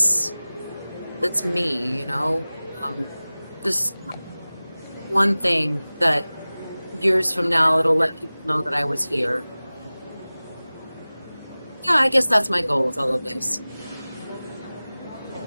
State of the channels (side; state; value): both; inverted; correlation -0.98